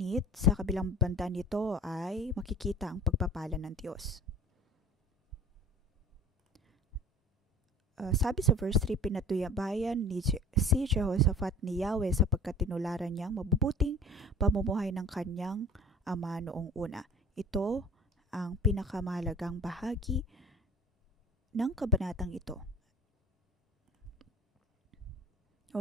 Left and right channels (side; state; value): both; normal; correlation 0.42